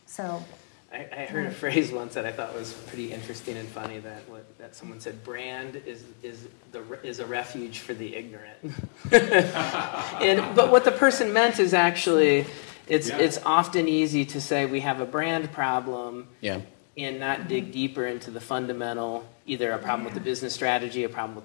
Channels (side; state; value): right; silent; digital silence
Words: So I heard a phrase once that I thought was pretty interesting and funny, that someone said, brand is a refuge for the ignorant. But what the person meant is actually, it's often easy to say we have a brand problem and not dig deeper into the fundamental, either a problem with the business strategy, a problem with